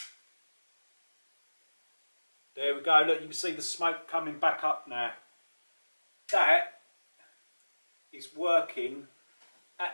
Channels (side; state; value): both; inverted; correlation -1.00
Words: There we go, look, you can see the smoke coming back up now. That is working